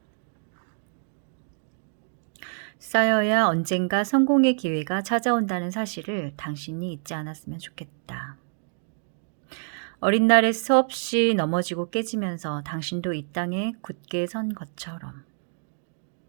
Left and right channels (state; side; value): silent; left; digital silence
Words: 쌓여야 언젠가 성공의 기회가 찾아온다는 사실을 당신이 잊지 않았으면 좋겠다. 어린 날에 수없이 넘어지고 깨지면서 당신도 이 땅에 굳게 선 것처럼.